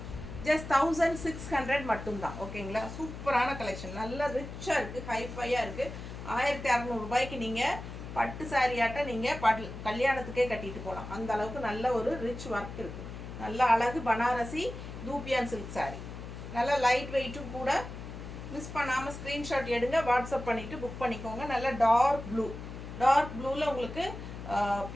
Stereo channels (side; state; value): left; noise; hum, 10 dB below the sound